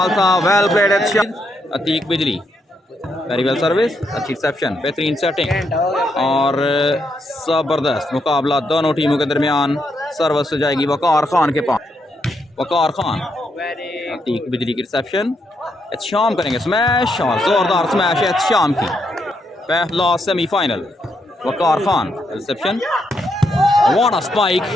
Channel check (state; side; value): normal; both; correlation 0.79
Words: था well played Atiq Bijli very well service, अच्छी रिसेप्शन, बेहतरीन सेटिंग और ज़बरदस्त मुकाबला दोनों टीमों के दरमियान। सर्विस जाएगी वकार खान के पास। वकार खान, अतीक बिजली की रिसेप्शन, एहतशाम करेंगे स्मैश और ज़ोरदार स्मैश एहतशाम की। पहला semifinal, Waqar Khan reception, what a spike,